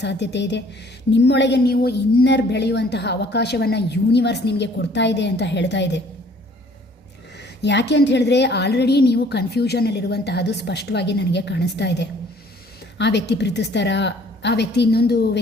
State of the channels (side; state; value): both; normal; correlation 0.56